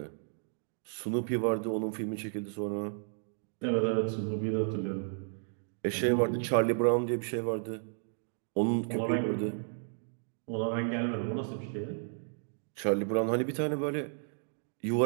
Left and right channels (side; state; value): left; silent; digital silence